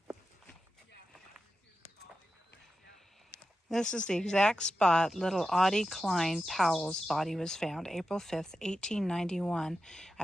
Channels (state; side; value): normal; both; correlation 0.91